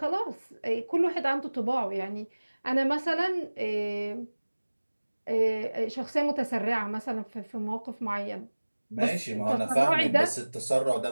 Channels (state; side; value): inverted; both; correlation -1.00